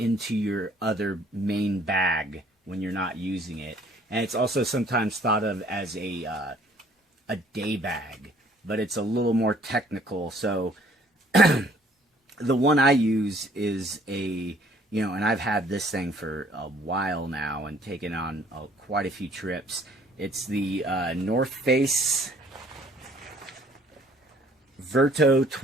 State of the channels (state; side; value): normal; both; correlation 0.59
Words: your other main bag when you're not using it. And it's also sometimes thought of as a day bag, but it's a little more technical. So the one I use is and I've had this thing for a while now and taken on quite a few trips. It's the North Face Verto